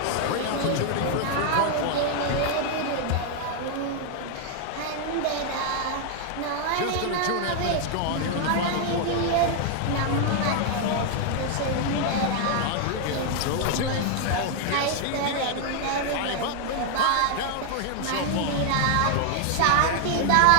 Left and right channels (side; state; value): both; different; correlation 0.00